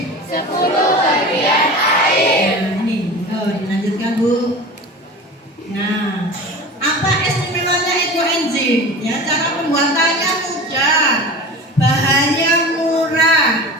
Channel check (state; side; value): normal; both; correlation 0.34